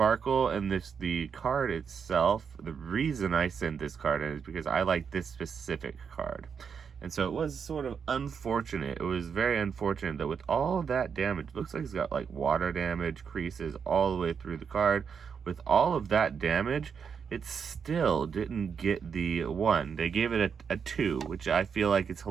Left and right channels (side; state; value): left; quieter; 6.6 dB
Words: and the card itself, the reason I sent this card in is because I like this specific card. And so it was sort of unfortunate. It was very unfortunate that with all that damage, looks like it's got like water damage, creases all the way through the card. With all of that damage, it still didn't get the 1. They gave it a 2, which I feel like it's